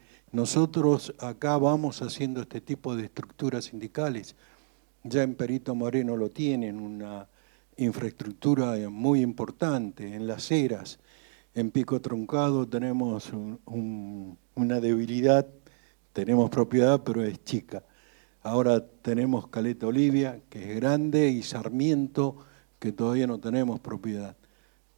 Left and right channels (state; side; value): silent; left; 58 dB below the other